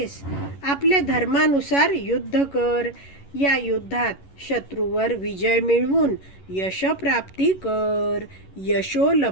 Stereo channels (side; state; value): right; late; 11 ms